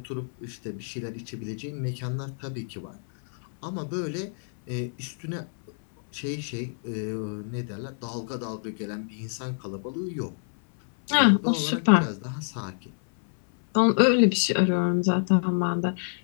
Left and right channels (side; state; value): right; silent; 58 dB below the other